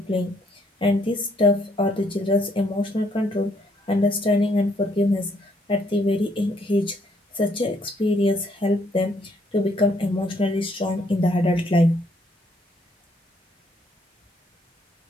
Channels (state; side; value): normal; both; correlation 0.69